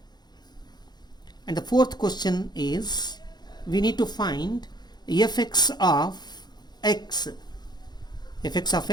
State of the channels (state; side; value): late; right; 0.20 ms